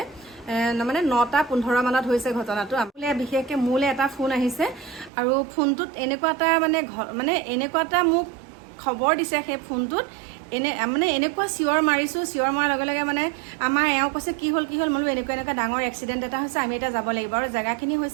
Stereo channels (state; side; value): drops out; left; at 5.1 s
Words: মানে 9:15 মানত হৈছে ঘটনাটো। বিশেষকৈ মোলৈ এটা ফোন আহিছে, আৰু ফোনটোত এনেকুৱা এটা মানে এনেকুৱা এটা মোক খবৰ দিছে। সেই ফোনটোত এনেকুৱা চিঞৰ মাৰিছোঁ, চিঞৰ মৰাৰ লগে লগে মানে আমাৰ এওঁ কৈছে কি হ'ল বোলো এনেকুৱা ডাঙৰ এক্সিডেণ্ট এটা হৈছে, আমি এতিয়া যাব লাগিব। আৰু জেগাখিনি